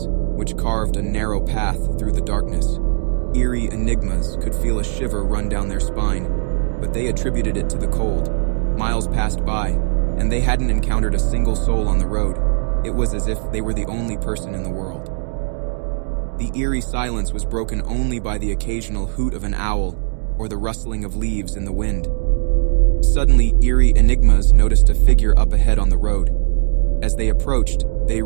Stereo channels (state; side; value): silent; left; digital silence